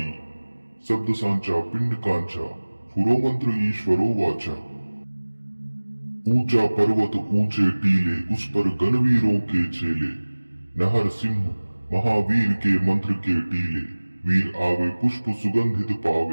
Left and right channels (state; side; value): inverted; both; correlation -1.00